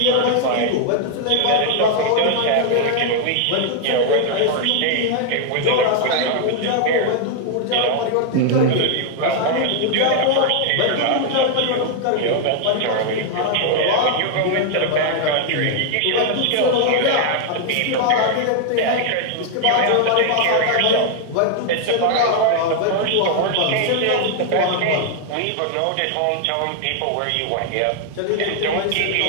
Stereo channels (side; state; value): both; different; correlation 0.00